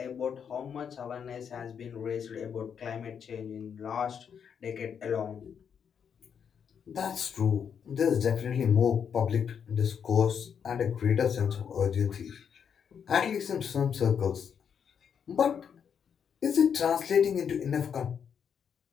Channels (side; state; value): right; quieter; 7.5 dB